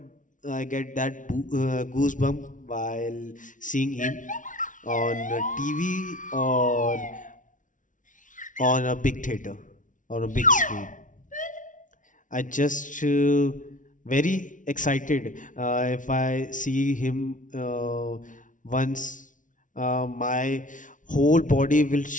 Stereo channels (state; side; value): late; right; 0.37 ms